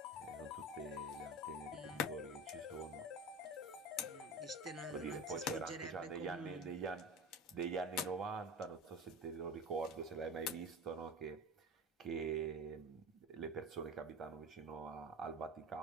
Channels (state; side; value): normal; both; correlation 0.30